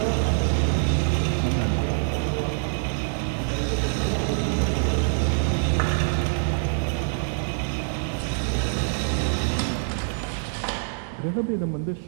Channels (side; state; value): left; silent; 62 dB below the other